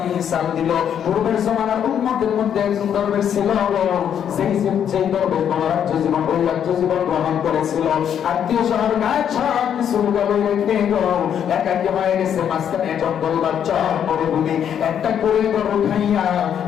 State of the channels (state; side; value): quieter; right; 8.9 dB